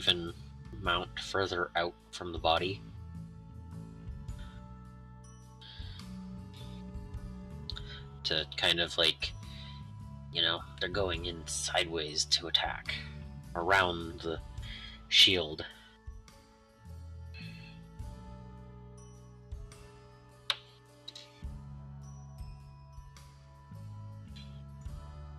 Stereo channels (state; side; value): identical; both; correlation 1.00